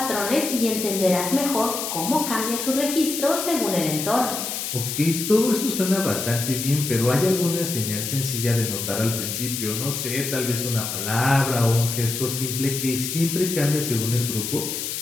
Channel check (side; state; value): left; noise; hiss, 4 dB below the sound